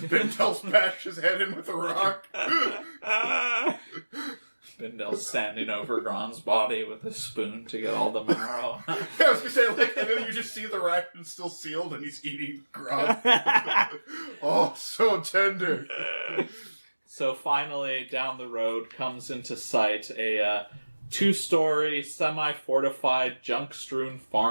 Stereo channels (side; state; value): both; inverted; correlation -1.00